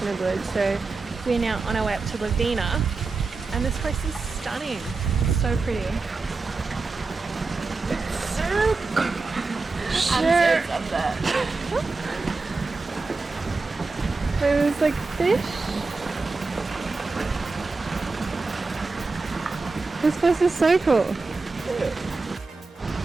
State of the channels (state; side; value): quieter; left; 3.9 dB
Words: the woods. So we're now on our way up to Lovina, and this place is stunning. It's so pretty. It's so cool. Sure. I'm so that. There's like fish. This place is so cool.